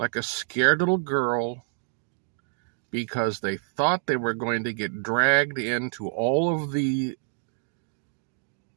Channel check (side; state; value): left; silent; digital silence